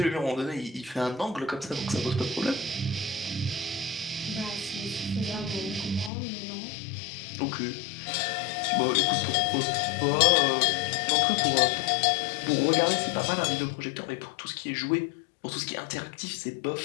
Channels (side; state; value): right; drops out; at 6.1 s